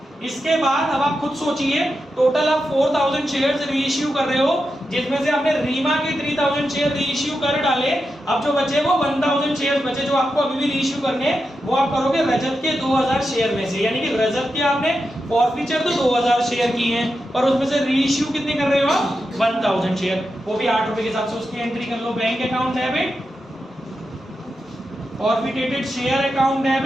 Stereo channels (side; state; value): both; normal; correlation 0.88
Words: इसके बाद अब आप खुद सोचिए, टोटल आप 4,000 शेयर्स रीइश्यू कर रहे हो, जिसमें से आपने रीमा के 3,000 शेयर रीइश्यू कर डाले। अब जो बचे वो 1,000 शेयर बचे जो आपको अभी भी रीइश्यू करने, वो आप करोगे रजत के 2,000 शेयर में से। यानी कि रजत के आपने फॉरफीचर तो 2,000 शेयर की हैं, पर उसमें से रीइश्यू कितने कर रहे हो आप? 1,000 शेयर, वो भी 8 रुपए के हिसाब से उसकी एंट्री कर लो। Bank account debit, forfeited share account